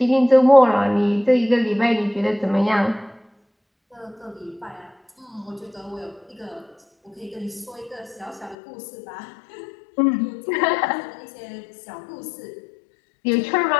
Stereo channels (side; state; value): right; drops out; at 8.6 s